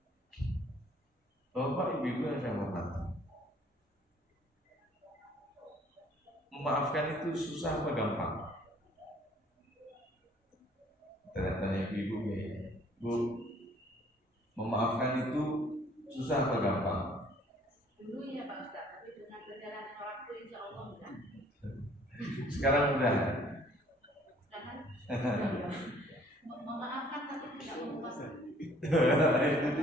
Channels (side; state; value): both; normal; correlation 0.58